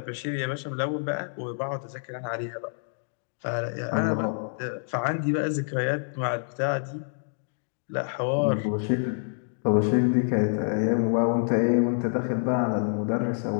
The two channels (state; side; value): silent; right; digital silence